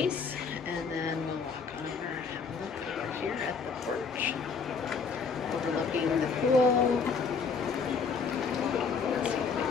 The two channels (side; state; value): right; quieter; 5.4 dB